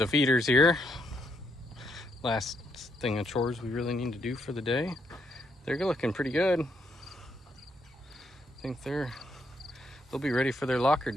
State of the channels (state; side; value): normal; both; correlation 0.76